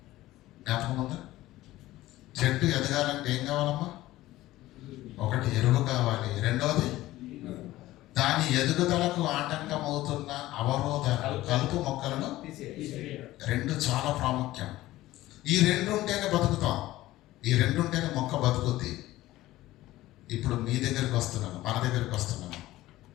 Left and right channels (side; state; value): right; quieter; 16.4 dB